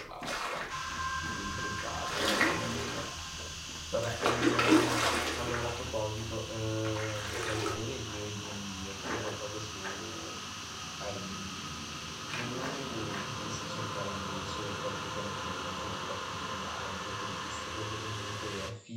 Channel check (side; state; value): both; identical; correlation 1.00